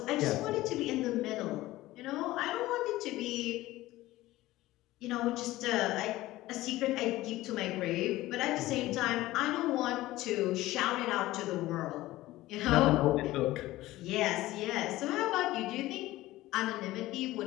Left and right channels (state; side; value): quieter; right; 17.1 dB